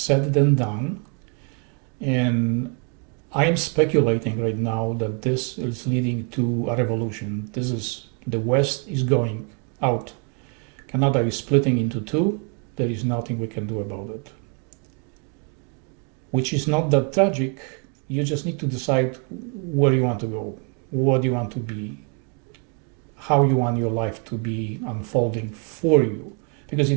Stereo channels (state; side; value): quieter; left; 36.2 dB